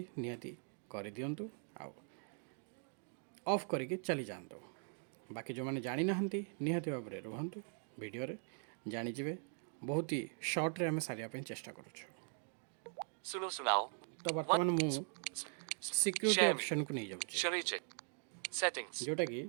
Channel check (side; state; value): left; silent; 50 dB below the other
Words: निहाती कर दिंतु आउ ऑफ करके चली जातु बाकी जो मैंने जानी ना निहाती भाव में रुहतु वीडियो रे जानीजे बहुत ही शॉर्ट रे हमें सारिया चेष्टा करूँ तो बर्तमान मु सिक्योरिटी ऑप्शन को नहीं जाऊँ जोटा कि